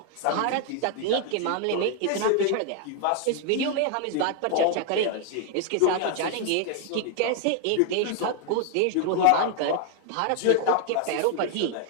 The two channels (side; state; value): both; different; correlation 0.00